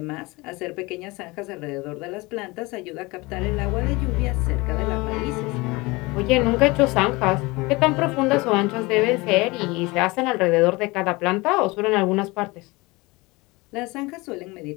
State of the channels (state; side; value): quieter; right; 23.7 dB